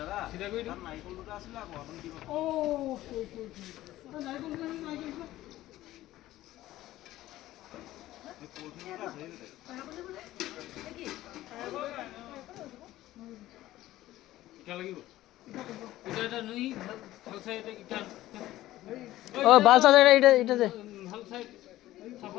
চিধা কৰি দিম নাৰিকল দুটা আছিলে আকৌ আপুনি দিব নাৰিকল লাগিব এটা নই ভাল সাইড এটা ও বাল সাইড এটা দে ভাল সাইড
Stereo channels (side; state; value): right; quieter; 15.4 dB